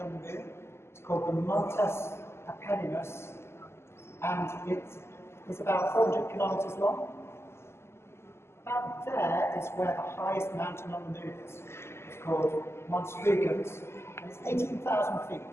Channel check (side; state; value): right; late; 0.12 ms